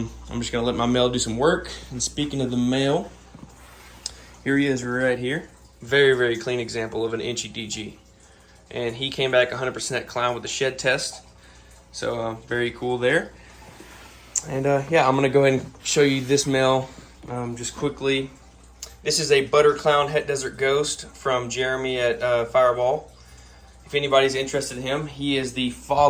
just going to let my male do some work. And speaking of the male, here he is right here. Very, very clean example of an inchy DG. And he came back 100% clown with the shed test. So very cool there. And yeah, I'm going to go ahead and show you this male just quickly. This is a Butter Clown Het Desert Ghost from Jeremy at Fireball. If anybody's interested in him, he is the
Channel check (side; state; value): both; identical; correlation 1.00